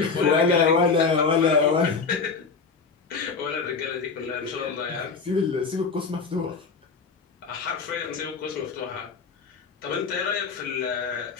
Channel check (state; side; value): quieter; right; 4.9 dB